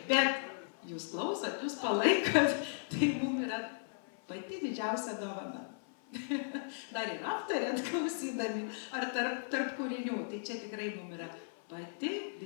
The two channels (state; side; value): silent; right; 54 dB below the other